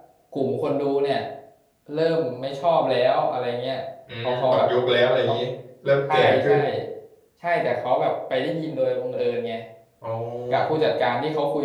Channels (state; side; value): identical; both; correlation 1.00